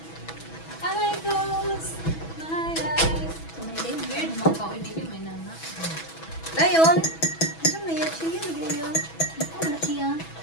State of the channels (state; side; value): late; right; 6.1 ms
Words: I close my eyes. Weird mo ka. Hindi ko may nana. Ngayon, ano na yan? Chia, lagyan yun. Ano na siya?